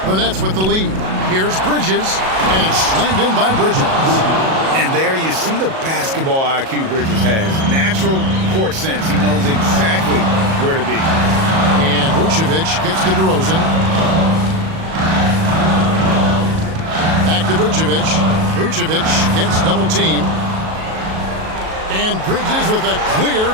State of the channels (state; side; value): late; left; 37 ms